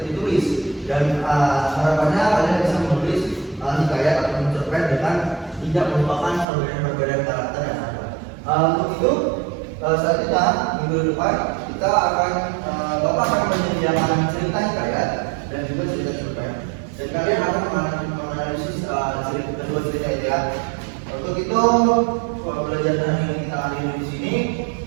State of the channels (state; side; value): drops out; left; at 6.5 s